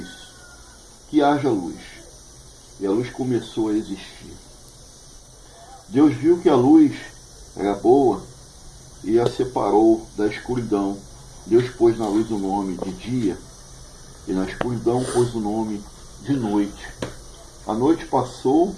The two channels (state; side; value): identical; both; correlation 1.00